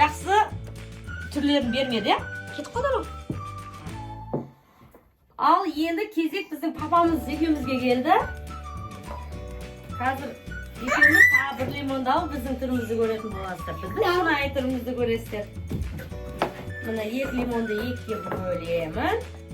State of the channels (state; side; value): identical; both; correlation 1.00